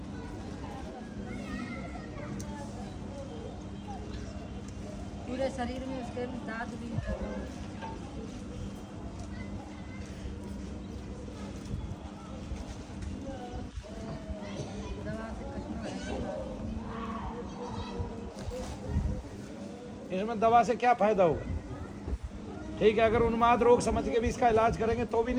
पूरे शरीर में उसके दांत भी निकल गए। दवा से कटना है। इसमें दवा से क्या फायदा होगा? ठीक है, अगर उन्माद रोग समझ के भी इसका इलाज करेंगे तो भी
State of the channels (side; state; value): both; identical; correlation 1.00